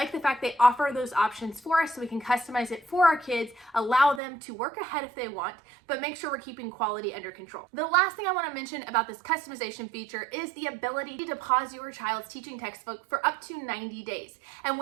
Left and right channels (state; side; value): drops out; left; at 4.2 s